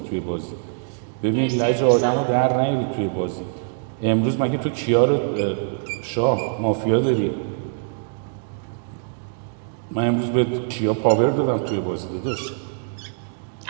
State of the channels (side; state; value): left; silent; digital silence